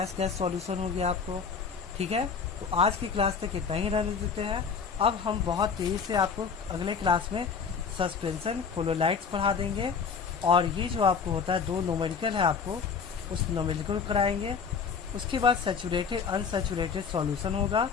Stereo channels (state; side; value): quieter; right; 5.9 dB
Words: गैस सॉल्यूशन हो गया आपको, ठीक है। तो आज की क्लास तक इतना ही रहने देते हैं। अब हम बहुत तेज़ी से आपको अगले क्लास में सस्पेंशन कोलोलाइट्स पढ़ा देंगे, और ये जो आपको होता है दो न्यूमेरिकल है आपको उस न्यूमेरिकल कराएंगे। उसके बाद सैचुरेटेड अनसैचुरेटेड सॉल्यूशन होगा,